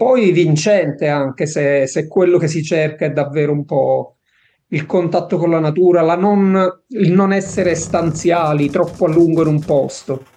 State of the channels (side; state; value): both; identical; correlation 1.00